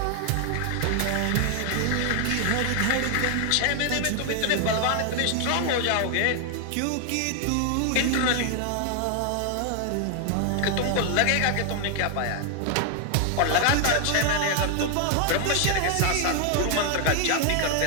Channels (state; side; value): different; both; correlation 0.00